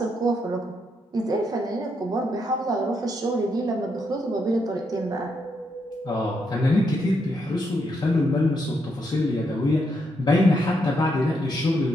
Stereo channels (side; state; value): both; normal; correlation 0.78